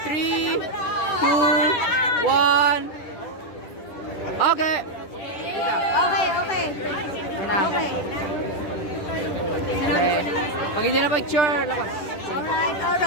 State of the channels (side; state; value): right; late; 10 ms